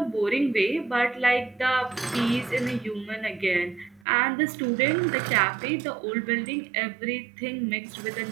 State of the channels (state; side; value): drops out; left; at 4.0 s